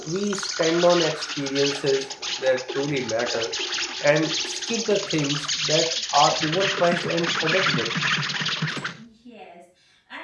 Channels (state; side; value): identical; both; correlation 1.00